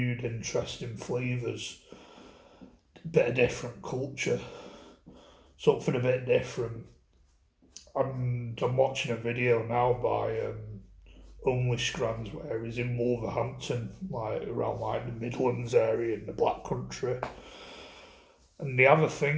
interesting flavours, bit of different culture, something a bit different. And I'm watching a video now by Only Scrans where he's in Wolverhampton, like around like the Midlands area in the Black Country. And they have a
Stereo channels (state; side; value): identical; both; correlation 1.00